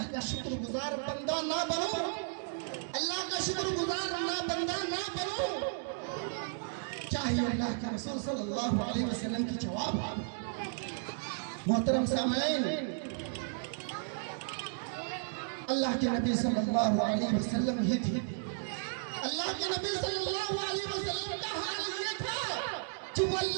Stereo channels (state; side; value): silent; left; digital silence